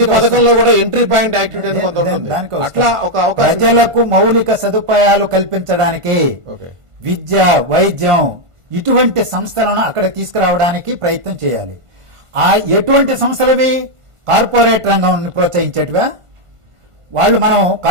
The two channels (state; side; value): late; left; 1.5 ms